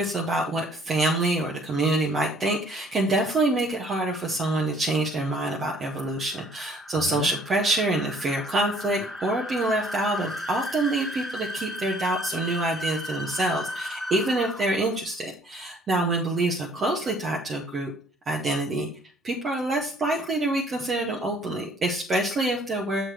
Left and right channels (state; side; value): normal; both; correlation 0.59